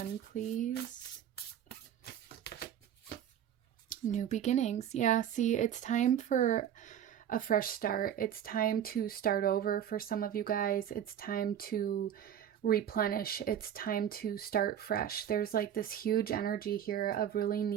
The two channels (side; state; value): left; quieter; 9.8 dB